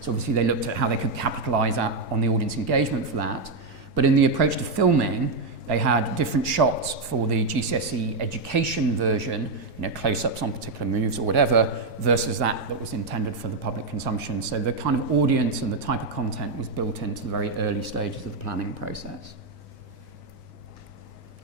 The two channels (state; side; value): quieter; left; 3.6 dB